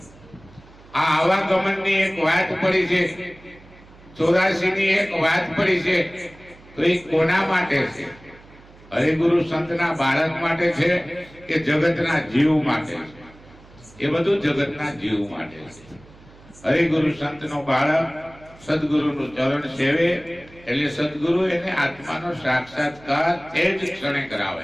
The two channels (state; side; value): noise; right; hum, 24 dB below the sound